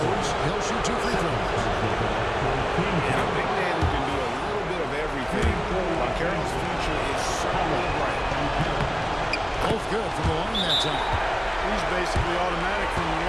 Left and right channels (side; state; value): both; identical; correlation 1.00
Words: He'll shoot 2 free throws. And a big man who can do a little bit of everything. Banchero's future is certainly bright. Both good from the line that time. He's basically automatic from the